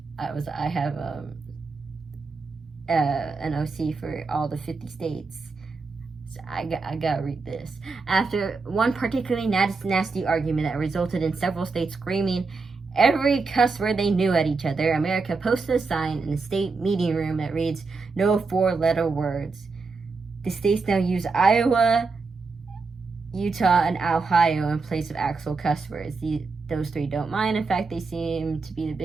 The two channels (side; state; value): left; quieter; 4.3 dB